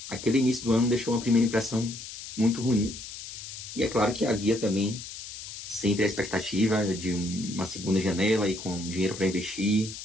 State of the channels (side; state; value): left; noise; hiss, 11 dB below the sound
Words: aquele início do ano deixou uma primeira impressão muito ruim. E é claro que havia também sempre a expectativa de uma segunda janela e com dinheiro para investir